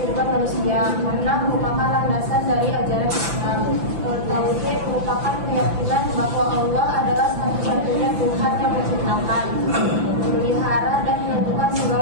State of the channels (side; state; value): left; late; 5.9 ms